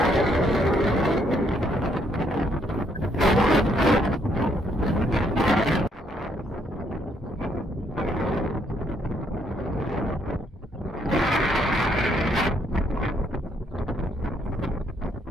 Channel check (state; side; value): normal; both; correlation 0.71